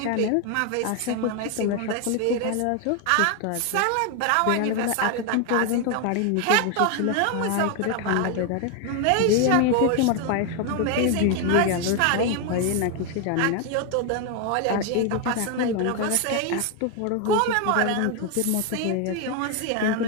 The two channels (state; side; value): different; both; correlation 0.01